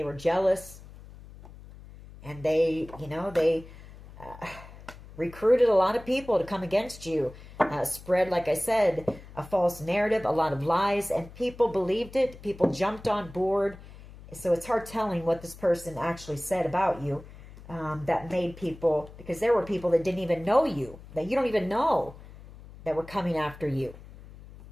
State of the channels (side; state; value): left; noise; hum, 18 dB below the sound